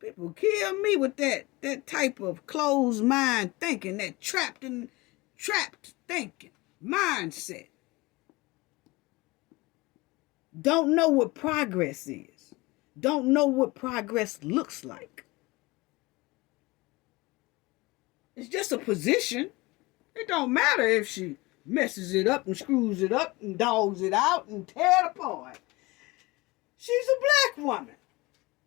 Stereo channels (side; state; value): right; quieter; 22.6 dB